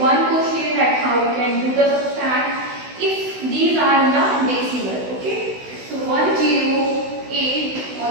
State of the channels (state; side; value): late; left; 16 ms